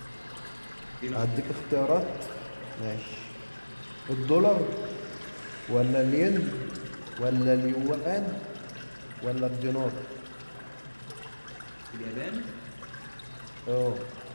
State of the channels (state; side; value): inverted; both; correlation -1.00